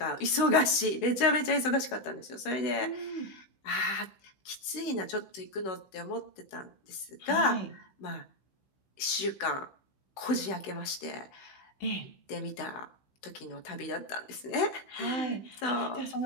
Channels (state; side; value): late; right; 15 ms